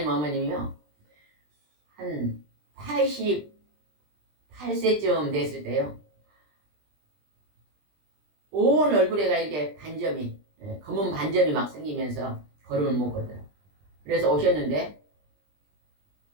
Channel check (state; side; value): late; left; 20 ms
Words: 어머님이요 한 88세쯤 됐을 때요 온 얼굴에가 이게 반점이, 검은 반점이 막 생기면서 걸음을 못 걷더라고요. 그래서 오셨는데